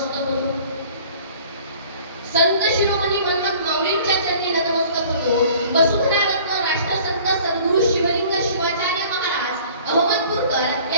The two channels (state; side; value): inverted; both; correlation -0.50